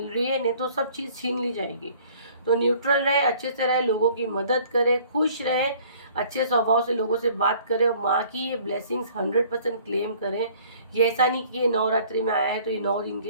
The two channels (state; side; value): inverted; both; correlation -0.54